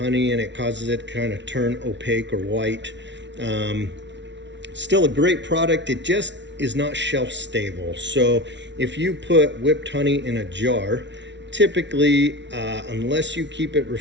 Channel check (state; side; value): late; left; 0.52 ms